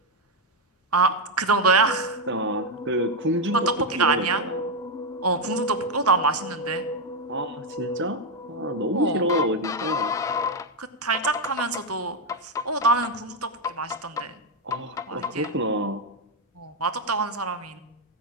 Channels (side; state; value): both; normal; correlation 0.04